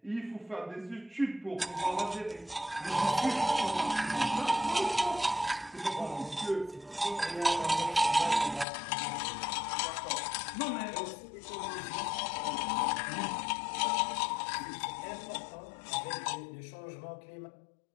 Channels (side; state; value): right; drops out; at 8.7 s